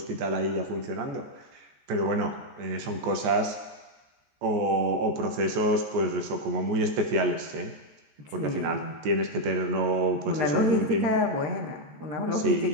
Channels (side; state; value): left; late; 14 ms